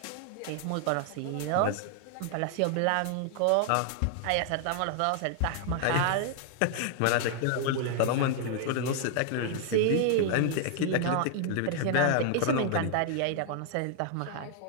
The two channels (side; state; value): both; different; correlation 0.00